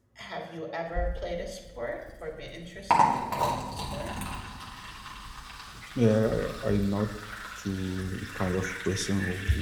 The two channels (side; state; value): both; identical; correlation 1.00